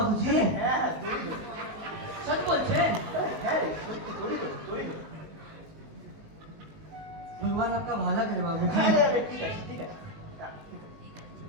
হ্যাঁ হ্যাঁ তোরই জন্য। सच बोलছে? হ্যাঁ রে, সত্যি তোরই জন্য, তোরই জন্য। भगवान आपका भला करे बाबूजी। হ্যাঁ, হ্যাঁ, ঠিক আছে, ঠিক আছে। হ্যাঁ, ঠিক আছে।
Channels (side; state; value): left; late; 19 ms